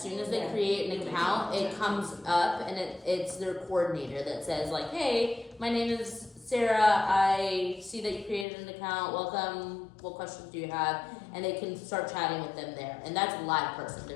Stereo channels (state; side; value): drops out; right; at 8.5 s